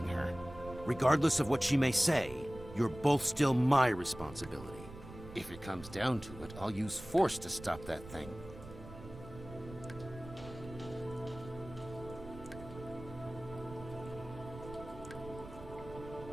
her. Regardless of what she may say, you're both still my responsibility. If it comes down to it, I'll use force to stop that thing.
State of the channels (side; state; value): right; noise; rumble, 15 dB below the sound